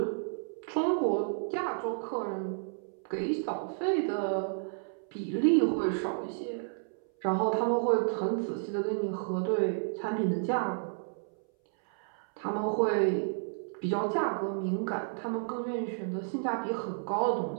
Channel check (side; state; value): left; silent; 57 dB below the other